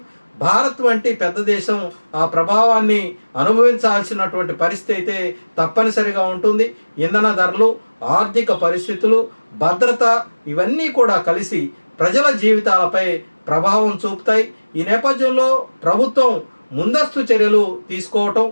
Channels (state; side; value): inverted; both; correlation -1.00